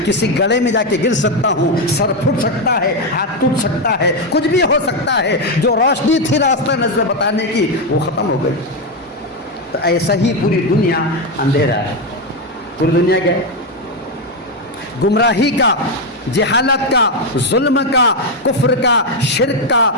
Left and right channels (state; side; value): normal; both; correlation 0.06